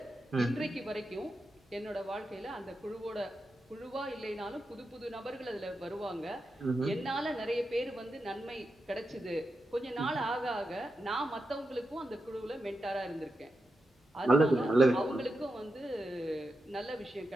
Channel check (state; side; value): normal; both; correlation 0.88